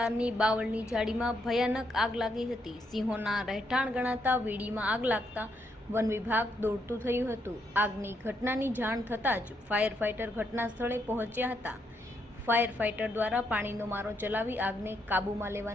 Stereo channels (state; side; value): normal; both; correlation 0.77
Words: બાવળની ઝાડીમાં ભયાનક આગ લાગી હતી. સિંહોના રહેઠાણ ગણાતા વીડીમાં આગ લાગતા વન વિભાગ દોડતું થયું હતું. આગની ઘટનાની જાણ થતાં જ ફાયર ફાઇટર ઘટના સ્થળે પહોંચ્યા હતા. ફાયર ફાઇટર દ્વારા પાણીનો મારો ચલાવી આગને કાબૂમાં